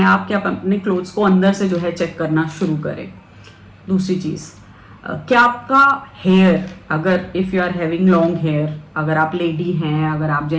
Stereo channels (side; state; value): both; identical; correlation 1.00